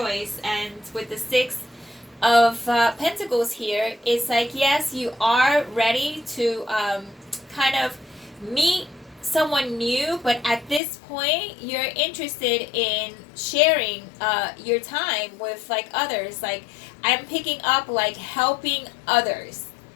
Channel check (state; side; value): drops out; right; at 10.8 s